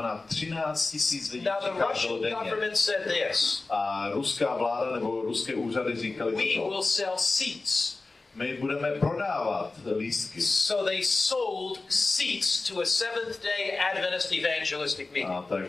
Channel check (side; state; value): right; quieter; 3.5 dB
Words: 13 tisíc lidí Now the přicházelo Russian denně. government said this. A ruská vláda nebo ruské úřady říkali We toto. will sell seats. My budeme prodávat lístky. So they sold seats to a Seventh-day Adventist evangelistic meeting. A